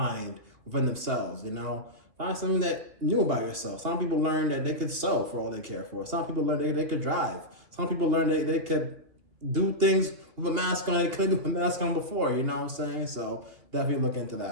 within themselves, Find something that new about yourself. Some people learn that they could sew for all they care for. Some people learn they could drive. Some people learn they could do things with a mask on they couldn't do with a mask on before, you know what I'm saying? So definitely look into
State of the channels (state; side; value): late; left; 2.8 ms